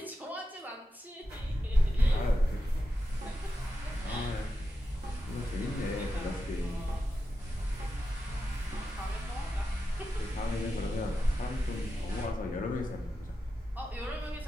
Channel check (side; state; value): both; normal; correlation 0.90